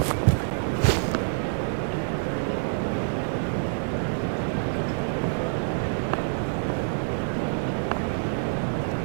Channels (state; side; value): silent; left; digital silence